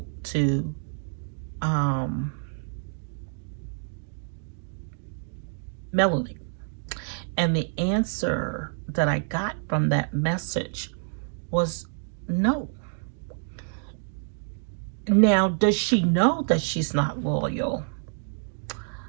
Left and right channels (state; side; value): silent; left; 60 dB below the other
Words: to Melody? And the answer that I got from that message was no. Now, does she know that she's not loyal?